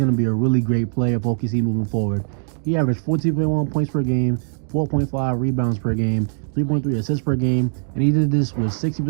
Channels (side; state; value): left; silent; digital silence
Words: to be a really great player for OKC moving forward. He averaged 14.1 points per game, 4.5 rebounds per game, 3.3 assists per game, and he did this with